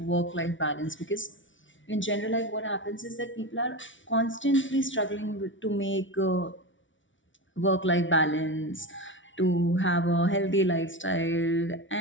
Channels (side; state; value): right; late; 0.56 ms